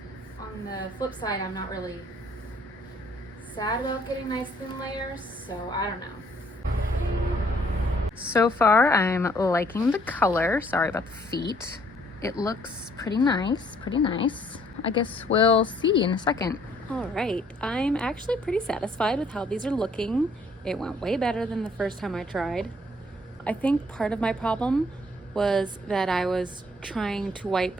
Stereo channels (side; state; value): both; normal; correlation 0.63